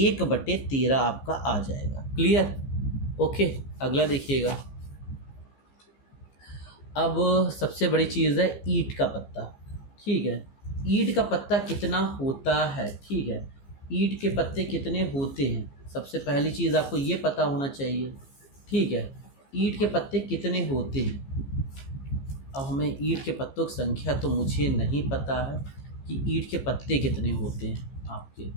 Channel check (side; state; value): right; late; 15 ms